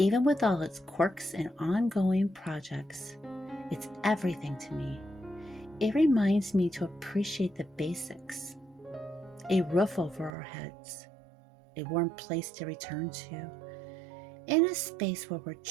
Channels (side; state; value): left; drops out; at 10.3 s